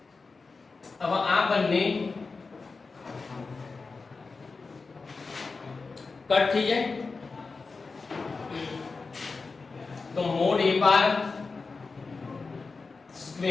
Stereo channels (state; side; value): quieter; right; 4.2 dB